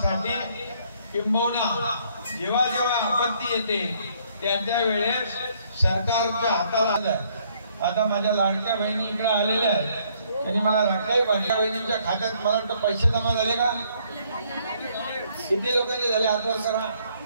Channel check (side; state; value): both; inverted; correlation -0.66